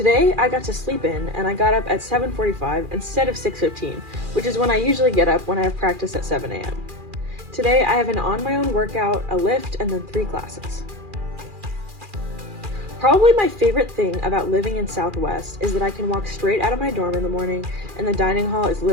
I got to sleep in, and I got up at 7:45 instead of 6:15, which is when I usually get up when I have practice at 7 a.m. Today, I have an on-my-own workout, a lift, and then 3 classes. Probably my favorite thing about living in Southwest is that I can walk straight out of my dorm in the morning and the dining hall is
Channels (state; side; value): late; left; 2.4 ms